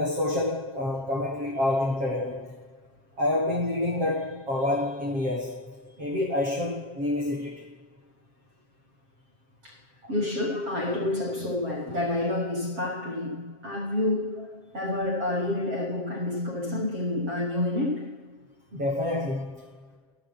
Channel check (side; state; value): left; late; 7.5 ms